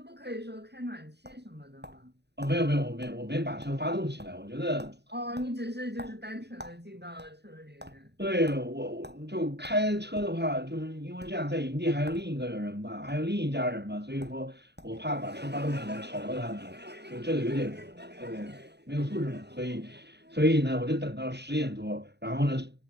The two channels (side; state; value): left; late; 0.49 ms